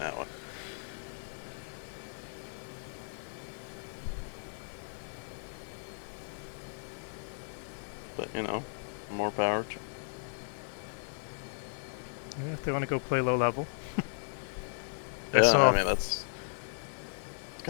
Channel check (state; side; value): silent; right; digital silence